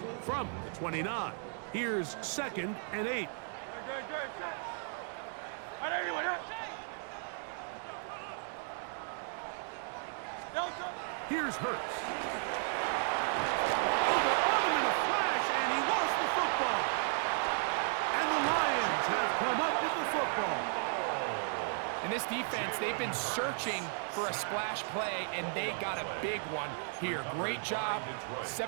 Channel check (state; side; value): silent; left; 55 dB below the other